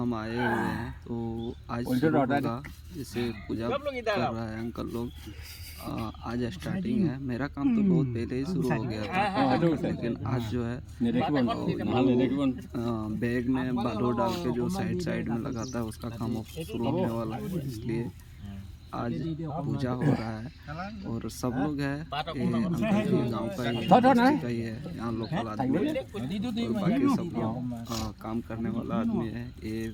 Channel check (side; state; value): both; identical; correlation 1.00